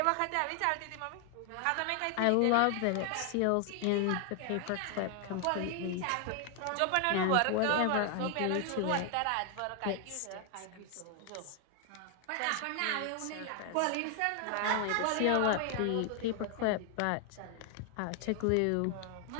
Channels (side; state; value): both; different; correlation 0.00